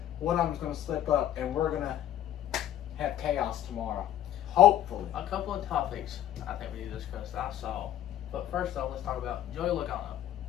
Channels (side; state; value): right; quieter; 11.8 dB